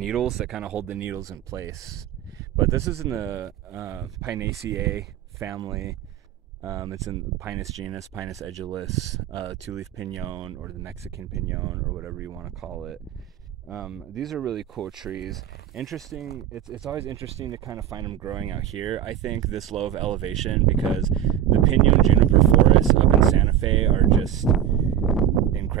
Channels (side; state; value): left; quieter; 10.6 dB